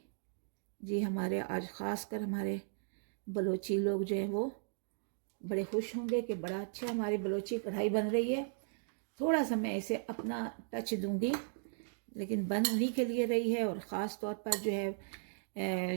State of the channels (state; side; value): silent; left; digital silence